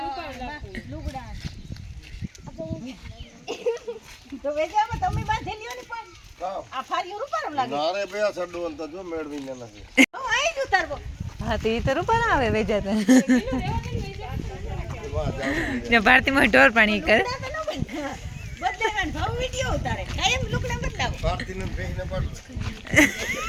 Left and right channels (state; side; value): identical; both; correlation 1.00